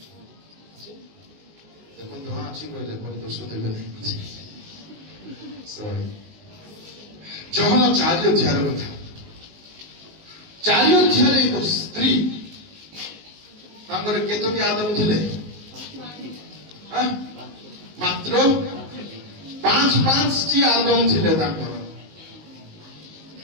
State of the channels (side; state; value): left; late; 19 ms